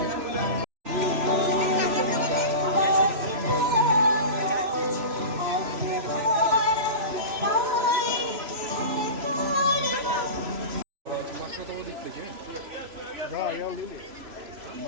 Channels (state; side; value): late; left; 3.0 ms